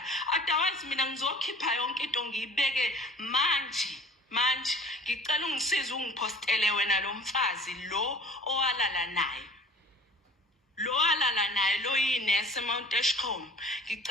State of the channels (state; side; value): normal; both; correlation 0.47